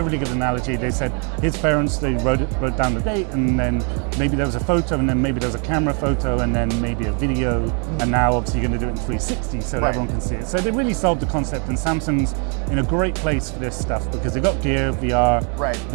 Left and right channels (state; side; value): quieter; left; 38.7 dB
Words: really good analogy. They said his parents, they wrote down the date, and then maybe there was a photo, and then maybe there was a camera photo, and then maybe a video, and now obviously you're going to do it in 360 so that everyone can see it. So they really solved the concept, and Samsung's in a great place for this stuff because they've got Gear, VR,